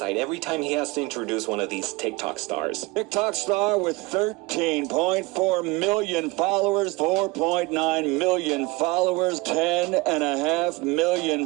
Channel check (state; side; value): quieter; left; 23.9 dB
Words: every time he has to introduce one of these TikTok stars. TikTok star with 13.4 million followers, 4.9 million followers, 10.5